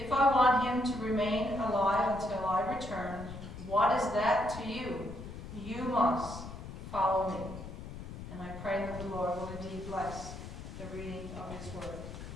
I want him to remain alive until I return, what is that to you? You must follow me. And I pray that the Lord will indeed bless the reading of his word.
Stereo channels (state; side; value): noise; left; rumble, 10 dB below the sound